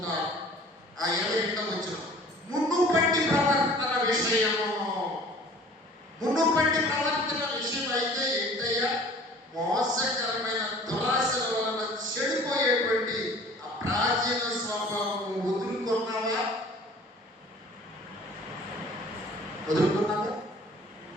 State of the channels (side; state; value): both; normal; correlation 0.48